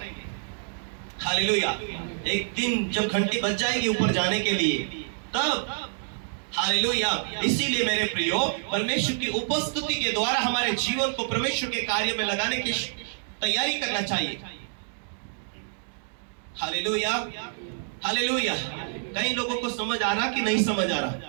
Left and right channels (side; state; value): left; silent; digital silence